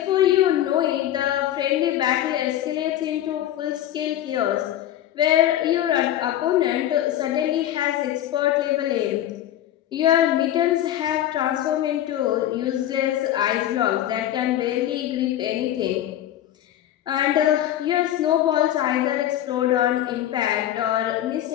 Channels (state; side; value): quieter; right; 12.3 dB